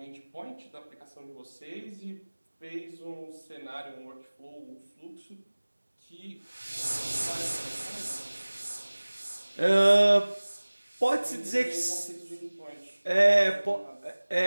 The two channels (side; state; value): both; inverted; correlation -1.00